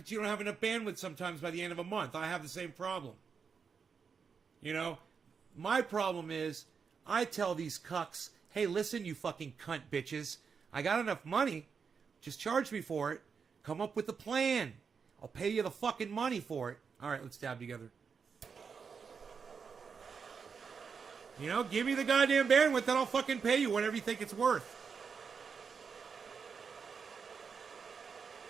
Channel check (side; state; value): left; quieter; 5.9 dB